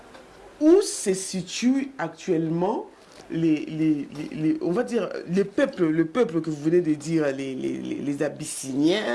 où se situent actuellement on va dire, le peuple que vous venez de dire, les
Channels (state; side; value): identical; both; correlation 1.00